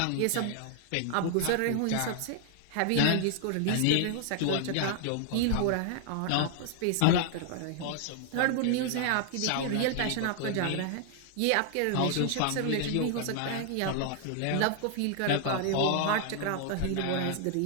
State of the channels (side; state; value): both; different; correlation 0.00